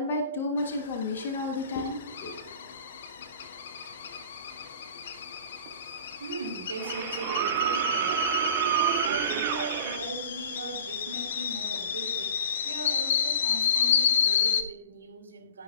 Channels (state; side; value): inverted; both; correlation -0.42